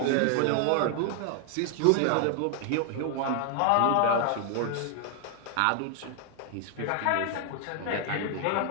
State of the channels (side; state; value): both; different; correlation 0.00